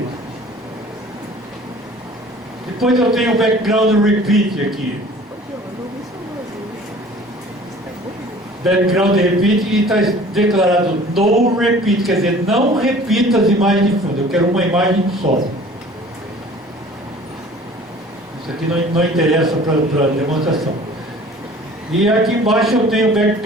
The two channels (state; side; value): normal; both; correlation 0.48